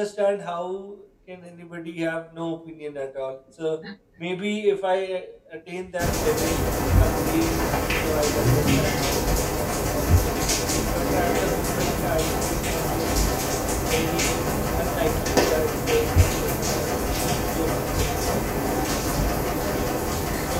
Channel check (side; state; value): both; identical; correlation 1.00